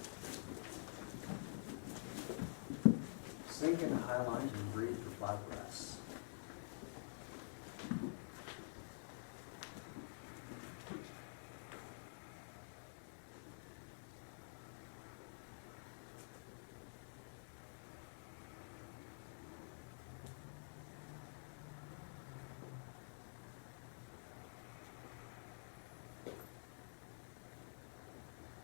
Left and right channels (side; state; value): right; silent; digital silence